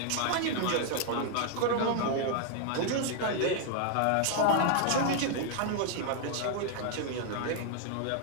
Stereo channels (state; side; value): different; both; correlation 0.00